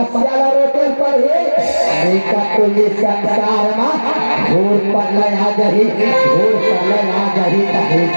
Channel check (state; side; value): inverted; both; correlation -1.00